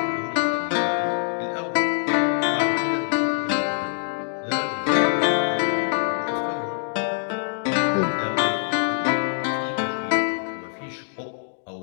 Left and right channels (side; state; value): right; silent; digital silence